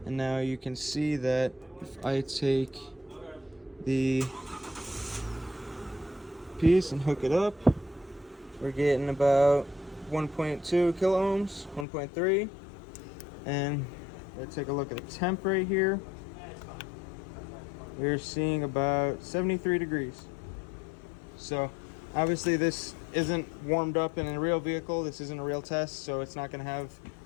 and now you can see that if I take the piece and hook it up, we're getting about 1.2 kilo ohms, 1.3, and let's take a look at the temp right here. We're seeing about 73 degrees. So obviously this isn't warmed up in a real vehicle. This isn't a real test, so it's not going to have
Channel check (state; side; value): drops out; right; at 11.9 s